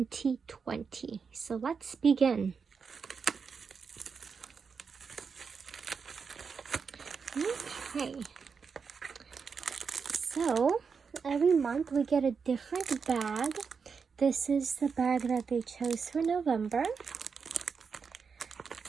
So let's begin. Okay. So every month we get a different bag. This is the bag that they chose for November.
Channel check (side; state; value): left; quieter; 5.7 dB